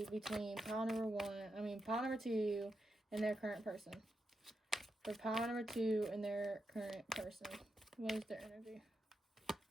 between pile number 2 and their current person? For pile number 2 and their current person, what is their energy?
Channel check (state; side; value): normal; both; correlation 0.85